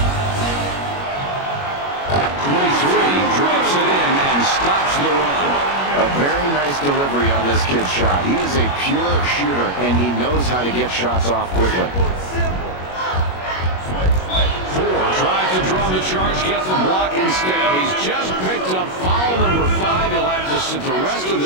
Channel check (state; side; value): late; right; 21 ms